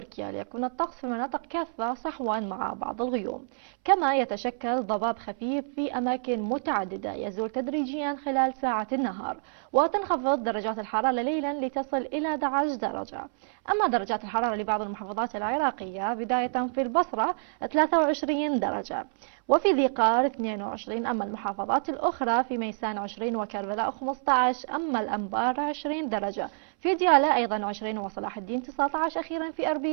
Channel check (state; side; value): silent; left; 59 dB below the other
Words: ليكون الطقس في المناطق كافة صحوا مع بعض الغيوم، كما يتشكل ضباب خفيف في أماكن متعددة يزول تدريجيا خلال ساعات النهار، وتنخفض درجات الحرارة ليلا لتصل إلى 11 درجة. أما درجات الحرارة لبعض المحافظات العراقية بداية في البصرة 23 درجة، وفي ذي قار 22، أما المحافظات الأخرى في ميسان 20 وكربلاء 15، أما الأنبار 20 درجة، في ديالى أيضا 20 وصلاح الدين 19، أخيرا في